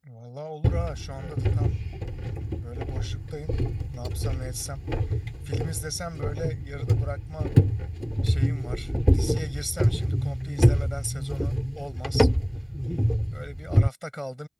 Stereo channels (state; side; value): identical; both; correlation 1.00